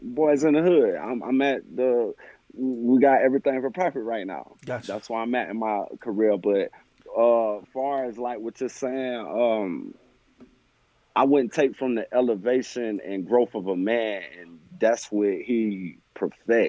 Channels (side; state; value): both; identical; correlation 1.00